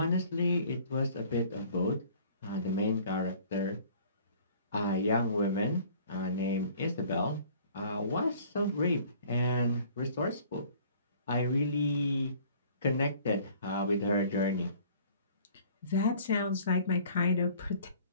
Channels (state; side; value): inverted; both; correlation -0.53